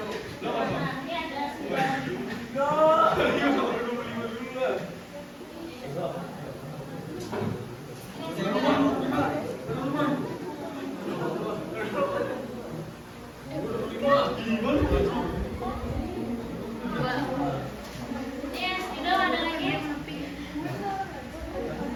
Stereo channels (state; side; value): identical; both; correlation 1.00